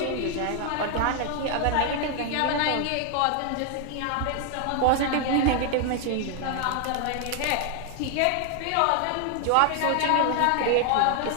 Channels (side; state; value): both; different; correlation 0.00